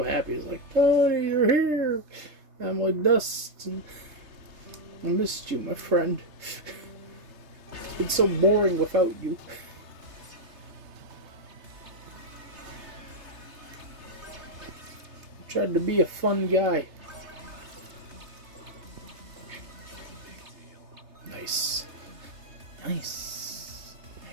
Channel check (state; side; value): late; left; 3.3 ms